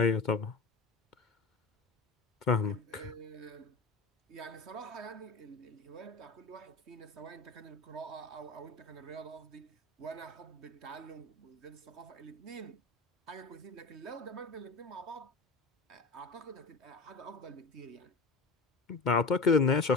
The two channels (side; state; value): right; quieter; 3.8 dB